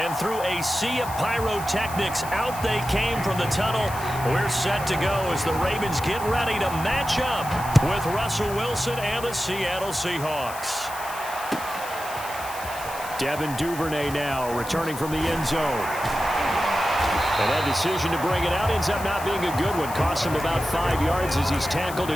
through a sea of pyrotechnics, out they came from the tunnel. We're set to go as the Ravens get ready to match up with Russell Wilson and the Seattle Seahawks. Devin Duvernay now returning from the end zone. And that decision to bring it out ends up not being a good one. Costs him about 5 yards as he's tackled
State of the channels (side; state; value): left; noise; hiss, 13 dB below the sound